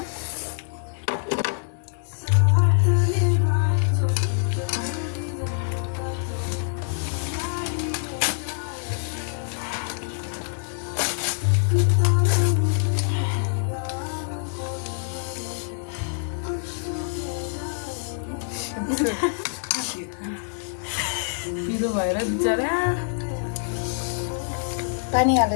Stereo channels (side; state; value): right; silent; digital silence